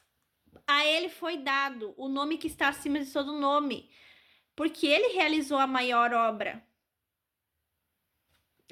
A ele foi dado o nome que está acima de todo nome, porque ele realizou a maior obra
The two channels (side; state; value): both; identical; correlation 1.00